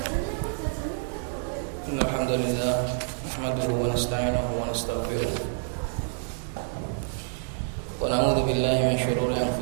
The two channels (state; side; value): silent; left; digital silence